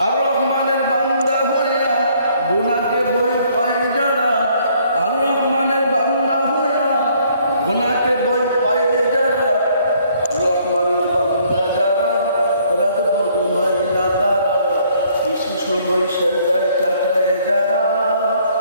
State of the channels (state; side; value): inverted; both; correlation -0.64